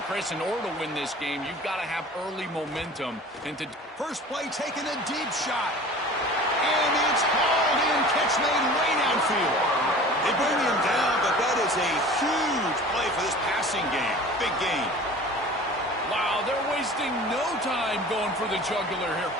Chris, in order to win this game, you've got to have early momentum. First play, taking a deep shot. And it's hauled in, catch made way downfield. They bring him down, but that is a huge play for this passing game. Big game. Wow, they're wasting no time going for the jugular here.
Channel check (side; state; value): both; normal; correlation 0.42